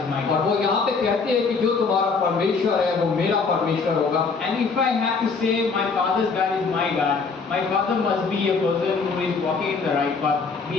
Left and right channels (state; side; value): quieter; right; 4.8 dB